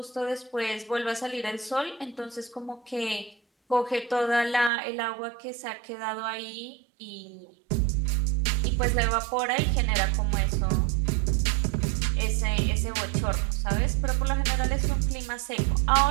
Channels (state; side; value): drops out; left; at 4.7 s